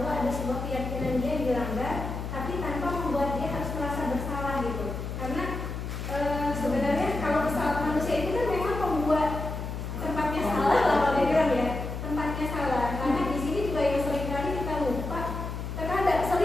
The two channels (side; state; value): left; noise; hum, 6 dB below the sound